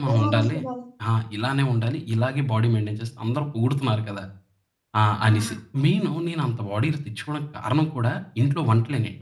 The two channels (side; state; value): both; identical; correlation 1.00